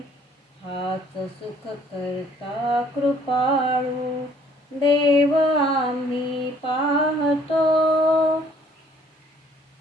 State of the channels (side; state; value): both; normal; correlation 0.60